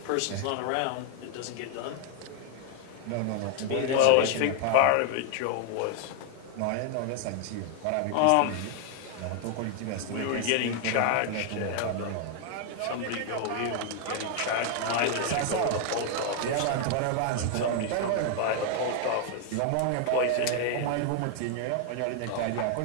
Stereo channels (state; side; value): different; both; correlation 0.00